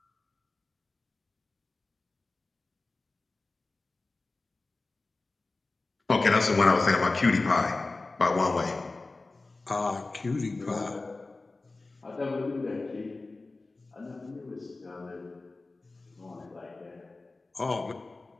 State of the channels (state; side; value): quieter; right; 3.4 dB